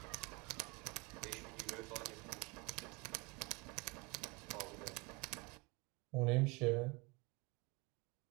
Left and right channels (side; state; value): left; quieter; 26.3 dB